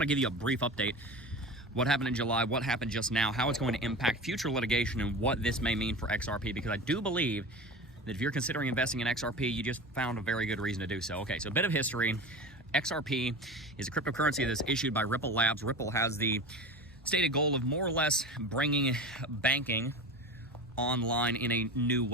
to give you a brief update. What happened in July, what happened just now, how it's going to impact future litigation, and what this may mean for XRP, because I do believe that if you're considering investing in XRP, you just found a very good reason to do so. Okay, so a bit of history. XRP is a cryptocurrency that's issued by Ripple Labs. Ripple has the stated goal of more or less bringing banking online in a new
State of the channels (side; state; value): both; normal; correlation 0.30